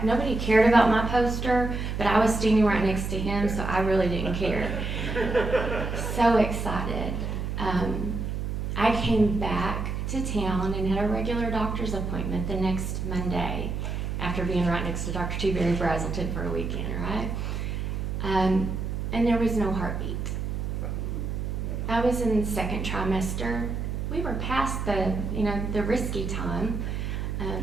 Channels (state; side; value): noise; right; hum, 3 dB below the sound